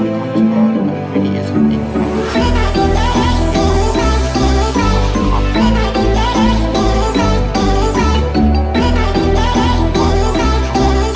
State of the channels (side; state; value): both; identical; correlation 1.00